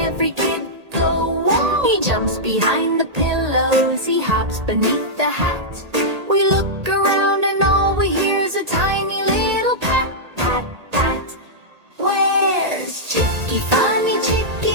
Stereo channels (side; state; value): left; late; 1.8 ms